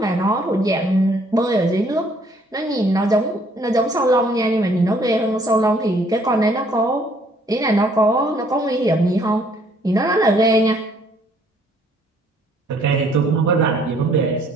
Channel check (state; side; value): normal; both; correlation 0.63